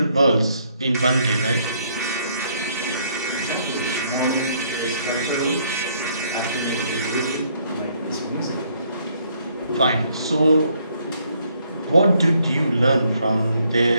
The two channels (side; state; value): both; inverted; correlation -0.69